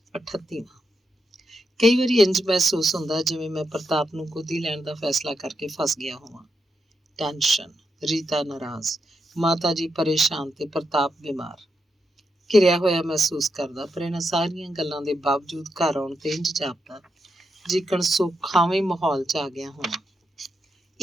38ਵਾਂ। ਕਈ ਵਾਰੀ ਇੰਝ ਮਹਿਸੂਸ ਹੁੰਦਾ ਜਿਵੇਂ ਮੈਂ ਪ੍ਰਤਾਪ ਨੂੰ ਗੋਦੀ ਲੈਣ ਦਾ ਫੈਸਲਾ ਕਰਕੇ ਫਸ ਗਿਆ ਹੋਵਾਂ। ਟੈਨਸ਼ਨ, ਰੀਤਾ ਨਾਰਾਜ਼, ਮਾਤਾ ਜੀ ਪਰੇਸ਼ਾਨ ਤੇ ਪ੍ਰਤਾਪ ਬਿਮਾਰ। ਘਿਰਿਆ ਹੋਇਆ ਮਹਿਸੂਸ ਕਰਦਾ, ਪਰ ਇਹਨਾਂ ਸਾਰੀਆਂ ਗੱਲਾਂ ਦੇ ਬਾਵਜੂਦ ਘਰ ਆਉਣ ਤੇ ਇੰਝ ਜਾਪਦਾ ਜਿਕਣ ਸੁਖਾਵੇਂ ਮਾਹੌਲ 'ਚ ਆ ਗਿਆ ਹੋਵਾਂ।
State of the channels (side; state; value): both; normal; correlation 0.84